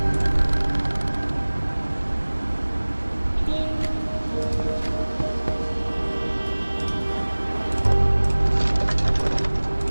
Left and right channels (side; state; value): both; inverted; correlation -1.00